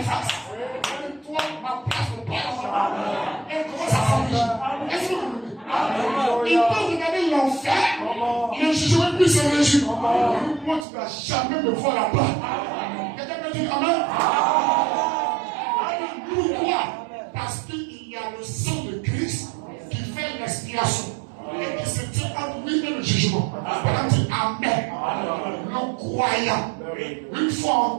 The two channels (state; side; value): drops out; left; at 10.9 s